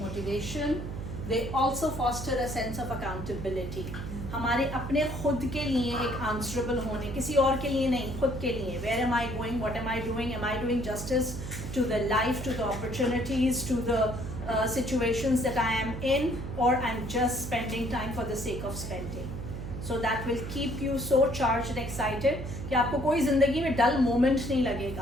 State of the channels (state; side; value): noise; right; hum, 7 dB below the sound